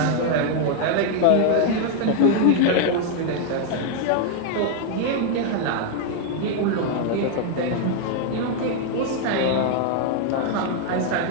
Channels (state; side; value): different; both; correlation 0.00